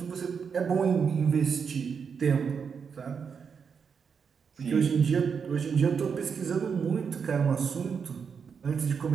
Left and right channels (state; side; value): quieter; left; 6.3 dB